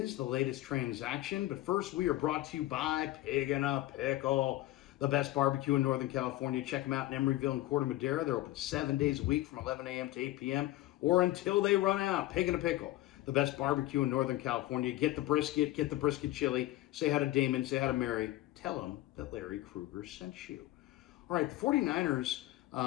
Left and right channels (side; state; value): right; quieter; 16.6 dB